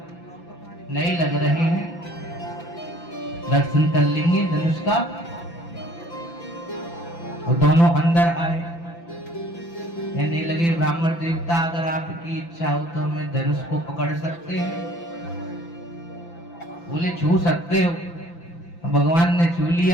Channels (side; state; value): right; late; 5.9 ms